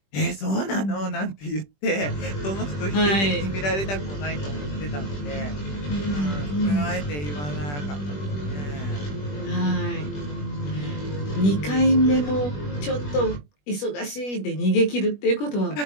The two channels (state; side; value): late; right; 21 ms